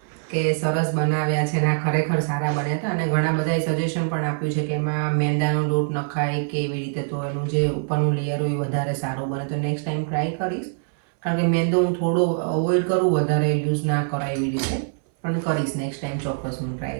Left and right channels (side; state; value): left; silent; 60 dB below the other